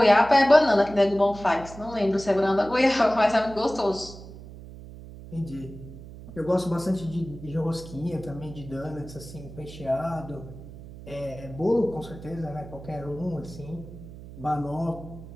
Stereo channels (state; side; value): noise; right; hum, 15 dB below the sound